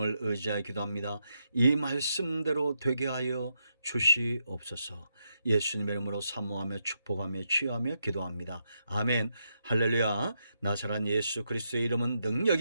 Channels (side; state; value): both; inverted; correlation -0.82